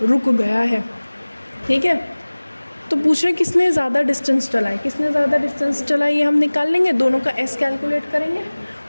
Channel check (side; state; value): both; inverted; correlation -1.00